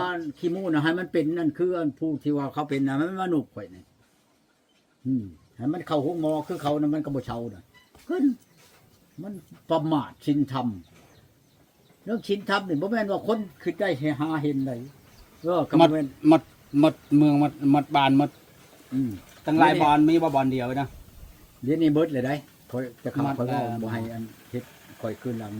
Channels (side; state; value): both; identical; correlation 1.00